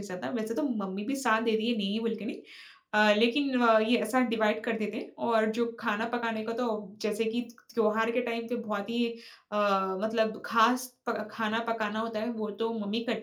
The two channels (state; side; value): identical; both; correlation 1.00